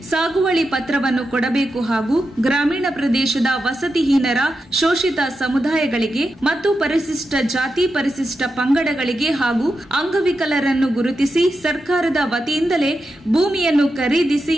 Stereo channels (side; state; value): both; normal; correlation 0.88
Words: ಸಾಗುವಳಿ ಪತ್ರವನ್ನು ಕೊಡಬೇಕು ಹಾಗೂ ಗ್ರಾಮೀಣ ಪ್ರದೇಶದ ವಸತಿಹೀನರ ಶೋಷಿತ ಸಮುದಾಯಗಳಿಗೆ ಮತ್ತು ಪರಿಶಿಷ್ಟ ಜಾತಿ ಪರಿಶಿಷ್ಟ ಪಂಗಡಗಳಿಗೆ ಹಾಗೂ ಅಂಗವಿಕಲರನ್ನು ಗುರುತಿಸಿ ಸರ್ಕಾರದ ವತಿಯಿಂದಲೇ ಭೂಮಿಯನ್ನು ಖರೀದಿಸಿ